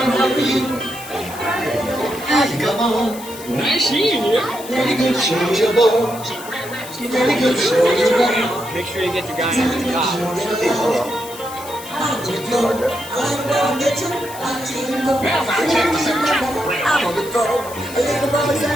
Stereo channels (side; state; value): left; noise; hiss, 15 dB below the sound